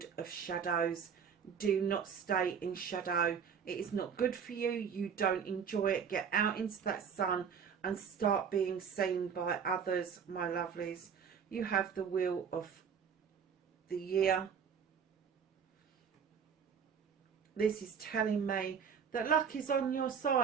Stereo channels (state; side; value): quieter; left; 7.0 dB